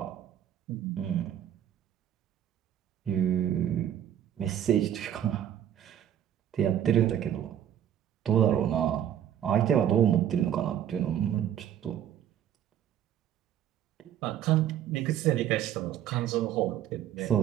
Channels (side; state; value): left; quieter; 10.4 dB